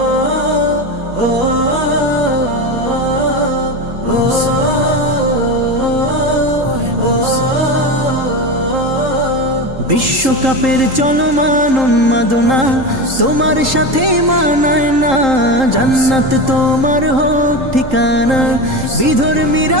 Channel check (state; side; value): late; left; 3.8 ms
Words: চলমান উন্মাদনা তোমার সাথে মানায় না। জান্নাত তোমার হোক ঠিকানা,